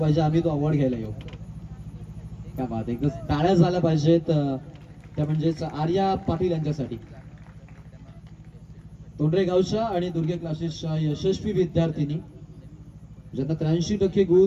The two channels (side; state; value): both; identical; correlation 1.00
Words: आम्ही तो अवॉर्ड घ्यायला येऊ. काय बात, एकदा टाळ्या झाल्या पाहिजेत त्या म्हणजेच आर्या पाटील यांच्यासाठी. तोंडरे गावच्या आणि दुर्गे क्लासेसच्या यशस्वी विद्यार्थिनी ज्यांना 83%